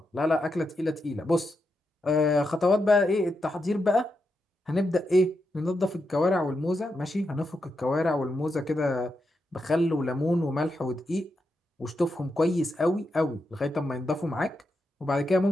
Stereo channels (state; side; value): normal; both; correlation 0.85